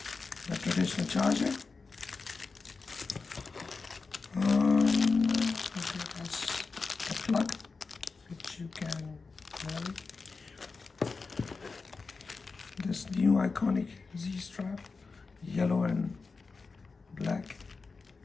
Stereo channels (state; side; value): quieter; right; 4.3 dB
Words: the traditional charger. That's the plug which you can vary. This new iconic Z strap, yellow and black.